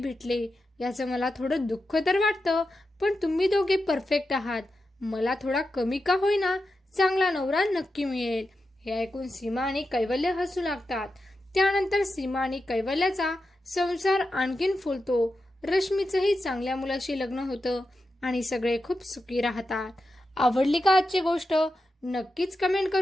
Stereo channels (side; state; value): both; normal; correlation 0.89